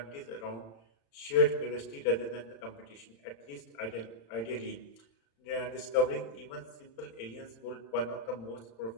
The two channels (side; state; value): right; late; 35 ms